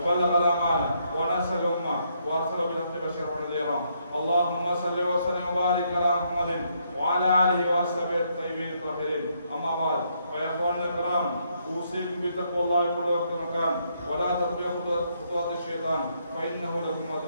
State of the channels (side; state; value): both; inverted; correlation -0.74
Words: الأمانة ونصح الأمة وأرسل بالحق بشيرا ونذيرا. اللهم صل وسلم وبارك على محمد وعلى آله وأصحابه الطيبين الطاهرين. أما بعد، فيا إخواننا الكرام، أوصيكم بتقوى الله في كل وقت ومكان ولا تتبعوا خطوات الشيطان فإنه لكم